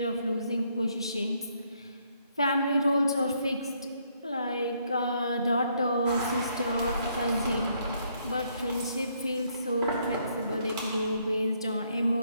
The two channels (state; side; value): inverted; both; correlation -0.71